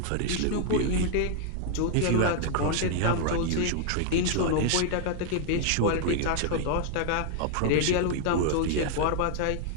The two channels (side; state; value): both; different; correlation 0.00